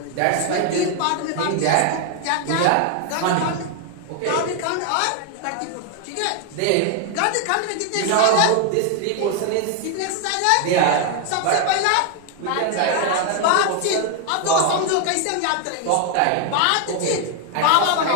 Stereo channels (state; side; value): different; both; correlation 0.00